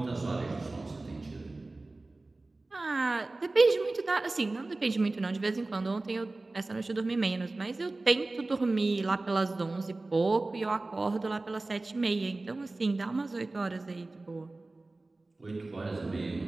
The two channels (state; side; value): quieter; left; 3.1 dB